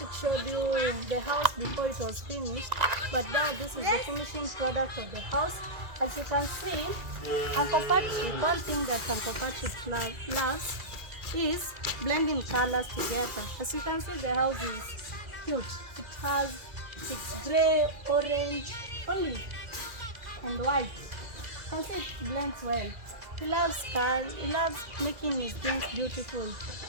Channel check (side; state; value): left; late; 2.0 ms